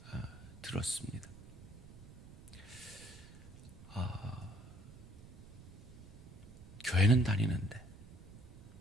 들었습니다. 교회는 다니는데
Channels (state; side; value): noise; right; rumble, 17 dB below the sound